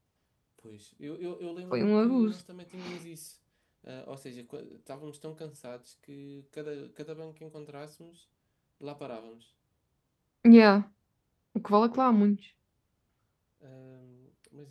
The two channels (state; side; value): identical; both; correlation 1.00